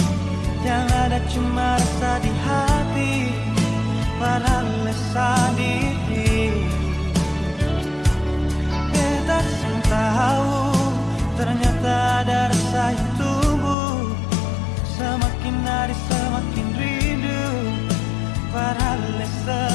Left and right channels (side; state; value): right; drops out; at 13.8 s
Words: yang ada cuma rasa di hati, padahal sendiri. Beta sing tahu ternyata ada rasa yang tumbuh, semakin hari semakin rindu, padahal